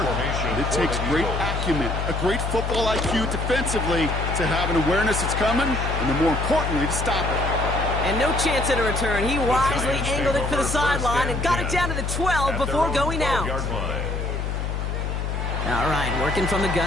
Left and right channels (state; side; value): noise; left; hum, 2 dB below the sound